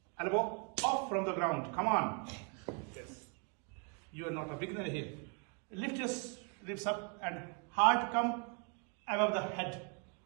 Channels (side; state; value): left; quieter; 37.4 dB